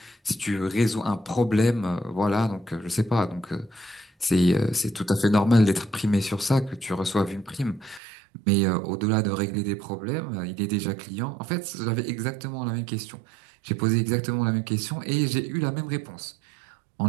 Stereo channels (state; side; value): drops out; left; at 8.0 s